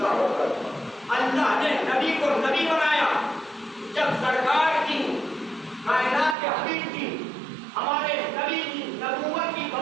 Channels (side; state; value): left; drops out; at 6.4 s